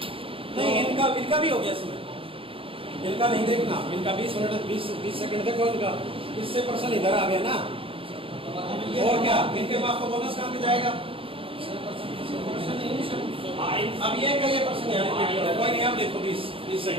नहीं, इनका भी हो गया इसमें। इनका नहीं देखना, इनका 20 मिनट 20 सेकंड देखो इनका, इससे प्रश्न इधर आ गया ना। और क्या इनके पास तो बोनस कहाँ पे जाएगा? अब ये का ये प्रश्न है, कोई नहीं, आप देखो 20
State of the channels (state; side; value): late; left; 0.26 ms